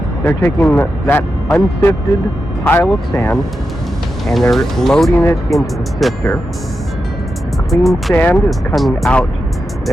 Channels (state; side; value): normal; both; correlation 0.89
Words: They're taking that unsifted pile of sand and they're loading it into the sifter. The clean sand is coming out